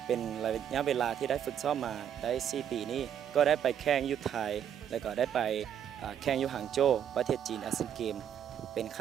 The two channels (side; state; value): left; quieter; 9.2 dB